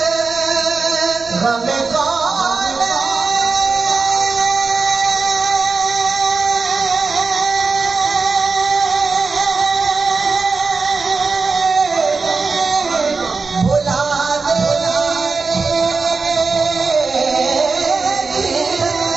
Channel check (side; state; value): left; quieter; 4.4 dB